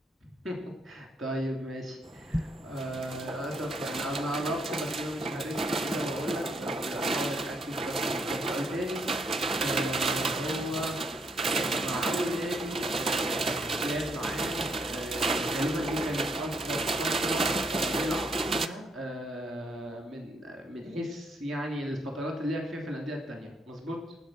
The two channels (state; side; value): normal; both; correlation 0.72